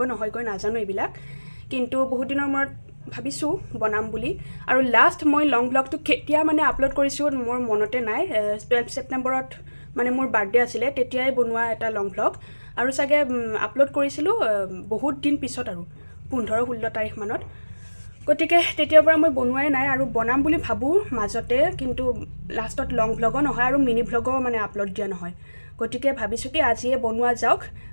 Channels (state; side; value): inverted; both; correlation -1.00